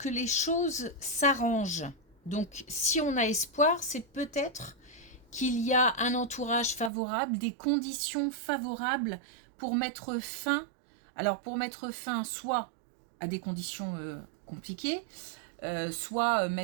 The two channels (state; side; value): drops out; left; at 6.9 s